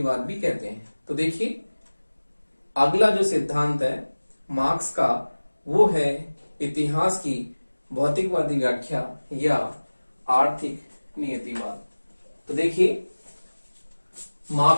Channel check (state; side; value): inverted; both; correlation -1.00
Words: भी कहते हैं। तो देखिए, अगला जो सिद्धांत है मार्क्स का वो है इतिहास की भौतिकवादी व्याख्या या आर्थिक नियतिवाद। तो देखिए,